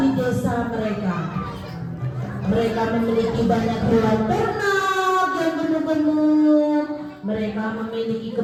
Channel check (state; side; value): identical; both; correlation 1.00